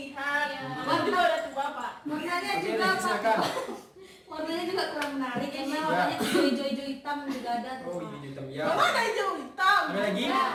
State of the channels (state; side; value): identical; both; correlation 1.00